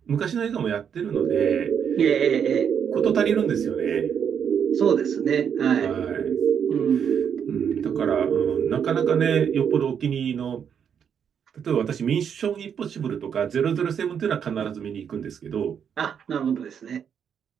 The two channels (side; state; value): left; quieter; 7.8 dB